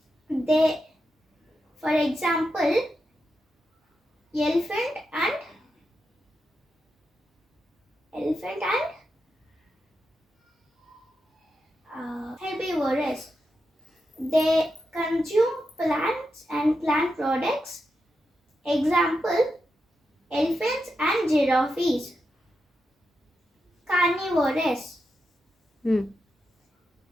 They, for example, elephant and herbivorous. They consume plants and plant products. Example, elephants and giraffes. Carnivorous.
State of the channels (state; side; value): normal; both; correlation 0.87